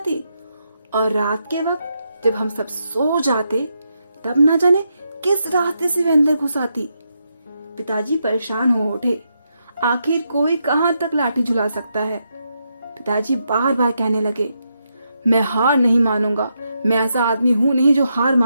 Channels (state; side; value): inverted; both; correlation -0.82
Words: और रात के वक्त जब हम सब सो जाते तब ना जाने किस रास्ते से वह अंदर घुस आती। पिताजी परेशान हो उठे। आखिर कोई कहां तक लाठी झुला सकता है। पिताजी बार बार कहने लगे, मैं हार नहीं मानूंगा, मैं ऐसा आदमी हूं नहीं जो हार